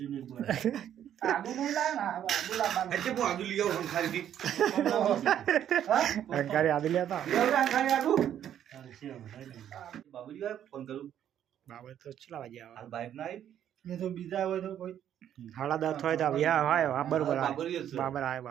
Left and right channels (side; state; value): left; quieter; 10.3 dB